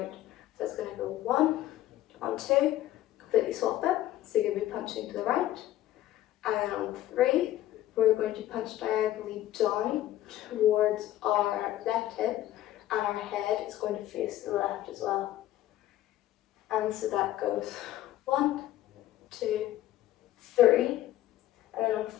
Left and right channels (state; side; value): quieter; right; 13.9 dB